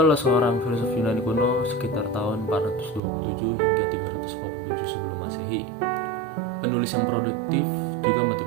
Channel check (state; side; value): drops out; left; at 3.0 s